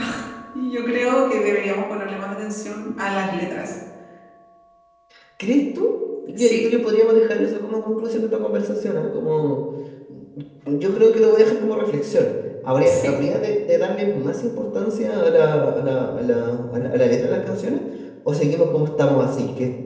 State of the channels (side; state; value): both; identical; correlation 1.00